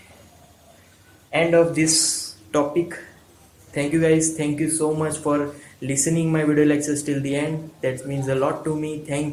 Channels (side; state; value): both; identical; correlation 1.00